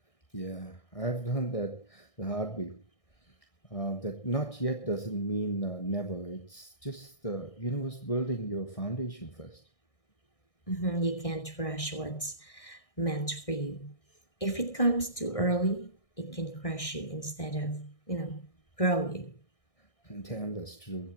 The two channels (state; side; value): late; right; 1.6 ms